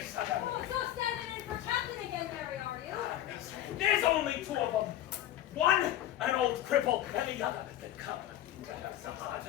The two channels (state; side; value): quieter; right; 12.8 dB